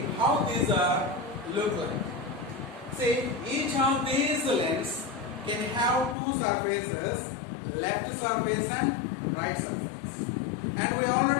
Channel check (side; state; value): right; drops out; at 6.2 s